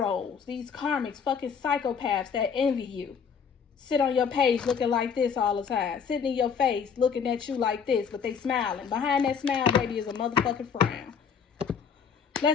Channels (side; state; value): right; quieter; 6.7 dB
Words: These karmics, fucking psychopaths that envy you. Sit on your page looking like this all the time. Sitting in your face looking at you like this, but they smiling. Behind that smile, baby, is a motherfucking frown.